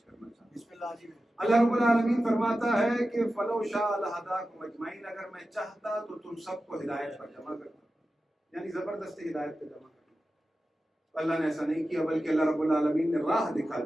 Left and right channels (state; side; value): normal; both; correlation 0.93